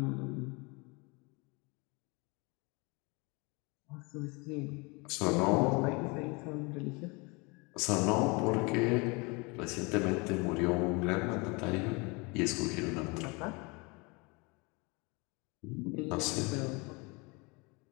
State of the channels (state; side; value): quieter; right; 28.3 dB